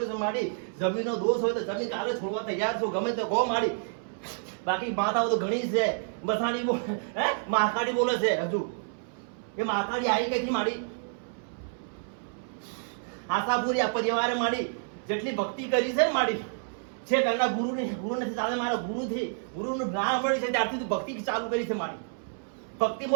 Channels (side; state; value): left; silent; 58 dB below the other